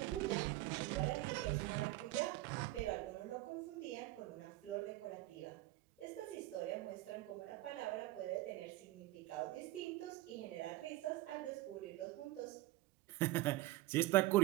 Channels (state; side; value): quieter; left; 17.7 dB